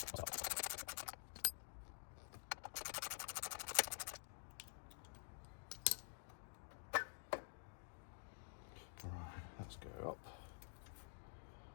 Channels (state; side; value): silent; right; digital silence